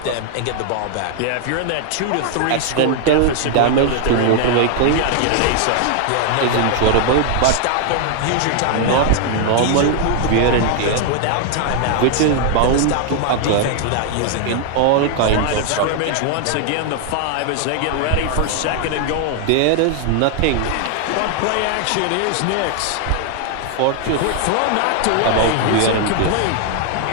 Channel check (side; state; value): both; different; correlation 0.00